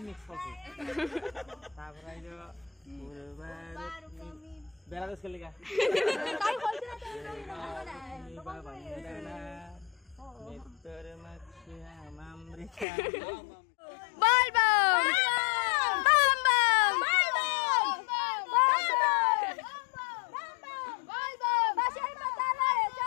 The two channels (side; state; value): right; drops out; at 12.9 s